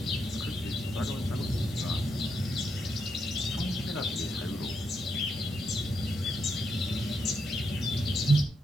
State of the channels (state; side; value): normal; both; correlation 0.81